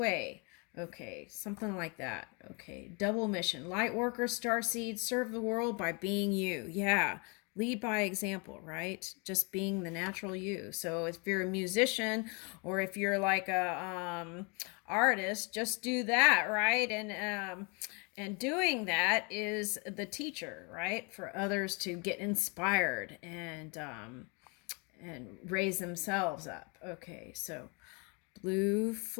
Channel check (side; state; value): right; quieter; 32.5 dB